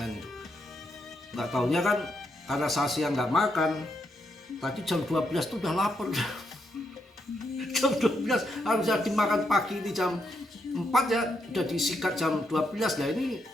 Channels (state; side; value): normal; both; correlation 0.79